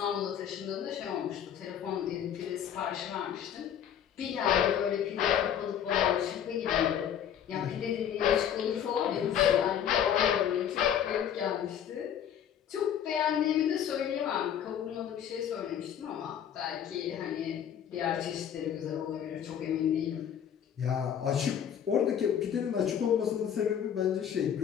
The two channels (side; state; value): right; quieter; 9.2 dB